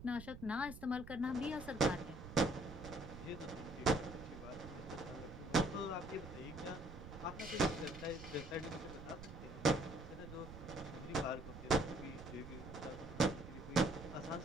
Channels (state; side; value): noise; right; rumble, 12 dB below the sound